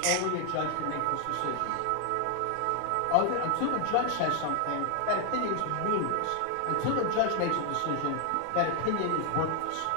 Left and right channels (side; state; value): both; different; correlation 0.00